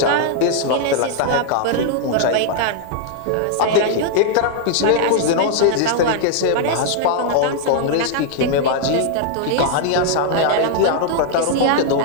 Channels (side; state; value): both; different; correlation -0.01